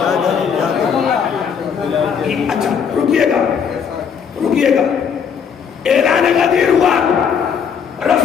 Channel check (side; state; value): right; quieter; 7.0 dB